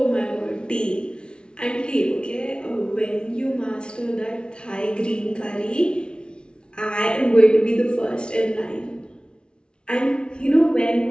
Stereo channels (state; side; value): late; right; 0.056 ms